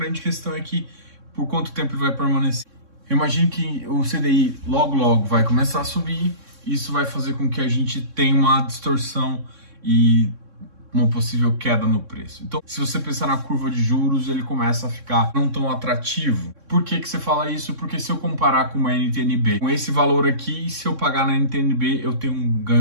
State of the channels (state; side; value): late; left; 3.6 ms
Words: questão é que por quanto tempo ele vai permanecer. Eu imagino que o CDI logo vai começar a subir. Isso vai fazer com que a gente tenha uma distorção e uma possível queda no preço. Então, se você pensar na curva de juros, ele começa a ficar não tão atrativo. Por que você fala isso? Porque se eu comparar com uma NTNB, com esse valor aqui, se eu pagar na NTNB, eu tenho um